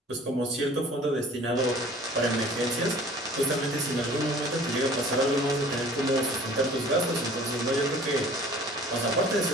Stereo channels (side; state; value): both; normal; correlation 0.48